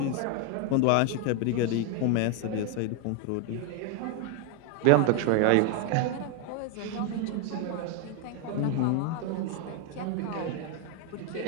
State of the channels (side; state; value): both; different; correlation 0.01